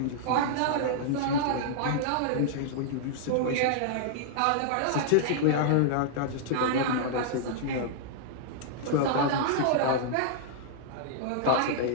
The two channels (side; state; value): both; different; correlation -0.01